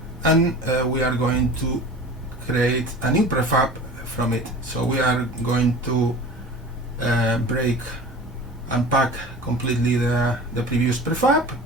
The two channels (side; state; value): both; normal; correlation 0.38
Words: and we are going to create a new prefab from it. So we are going to unpack completely the previous prefab.